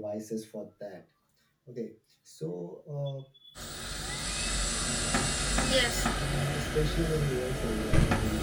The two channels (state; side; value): identical; both; correlation 1.00